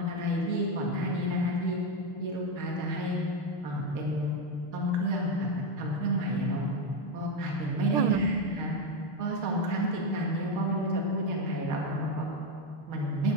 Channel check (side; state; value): right; late; 6.4 ms